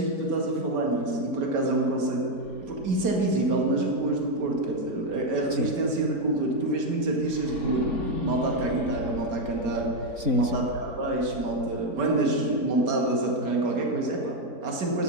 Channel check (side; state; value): left; late; 4.0 ms